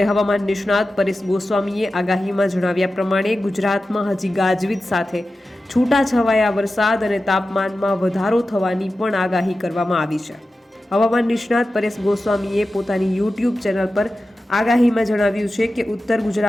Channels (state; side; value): normal; both; correlation 0.94